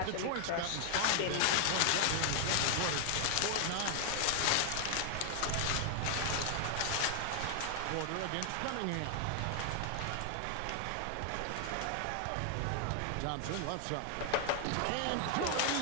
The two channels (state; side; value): different; both; correlation 0.00